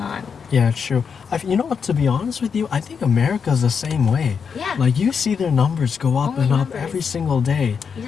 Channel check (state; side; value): quieter; right; 6.4 dB